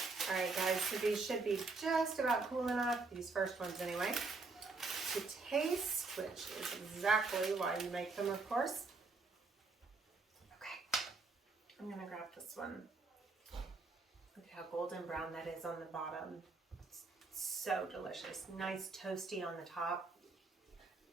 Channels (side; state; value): left; quieter; 3.9 dB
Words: All right, guys, so these should be just about cool enough, these first ones anyway, to taste, which is exactly why you make them, of course. Okay, I'm going to grab this one. Look at how golden brown that is on the bottom. It's so delicious. Nice toasty on the top.